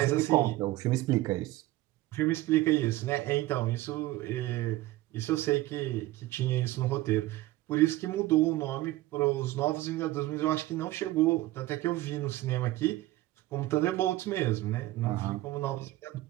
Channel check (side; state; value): left; quieter; 17.4 dB